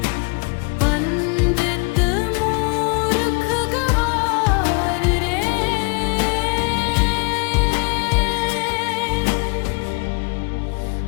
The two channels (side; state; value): right; quieter; 31.5 dB